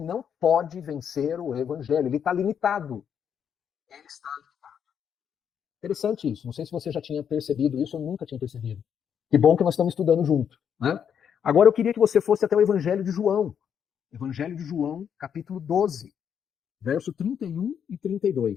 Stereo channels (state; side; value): quieter; right; 8.1 dB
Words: pode vencer o evangelho. Ele está limitado. Ele está limitado. Interessante isso. Não sei se você já tinha percebido isso, eu nunca tinha percebido. Que bom que nós estamos estudando junto, né? Agora eu queria que você fosse até o Evangelho de João. Evangelho de João, capítulo 12, verso 31 e